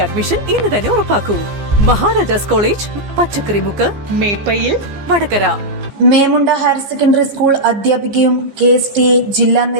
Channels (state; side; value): late; left; 15 ms